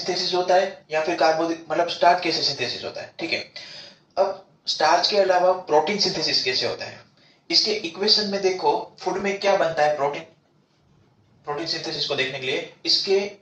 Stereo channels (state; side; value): identical; both; correlation 1.00